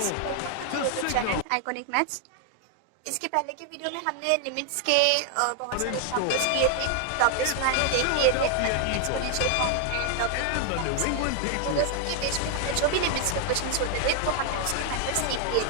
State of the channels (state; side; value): different; both; correlation 0.00